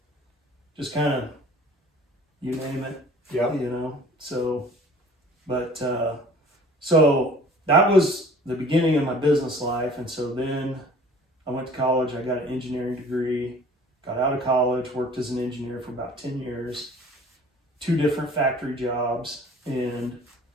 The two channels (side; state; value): both; normal; correlation 0.48